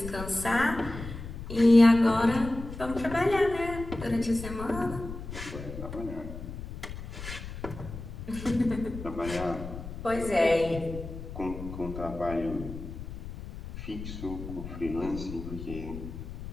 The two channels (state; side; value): noise; left; rumble, 10 dB below the sound